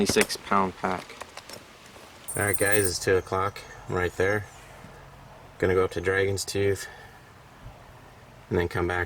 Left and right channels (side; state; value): both; identical; correlation 1.00